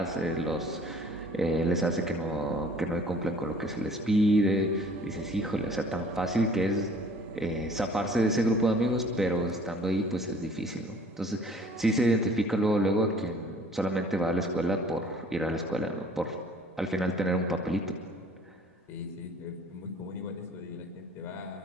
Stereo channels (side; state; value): both; normal; correlation 0.52